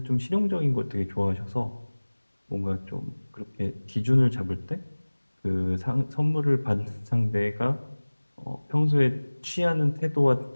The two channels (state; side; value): inverted; both; correlation -1.00